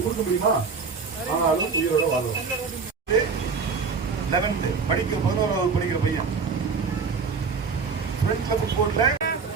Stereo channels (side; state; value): left; quieter; 5.2 dB